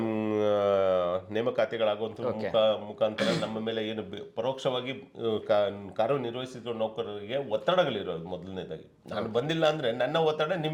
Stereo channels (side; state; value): both; identical; correlation 1.00